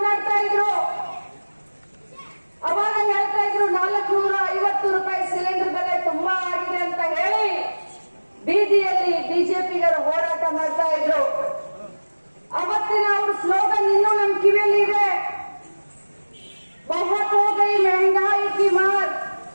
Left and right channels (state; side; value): inverted; both; correlation -1.00